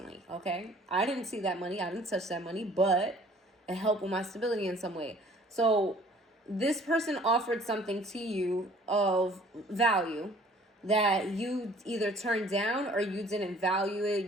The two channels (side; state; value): both; normal; correlation 0.54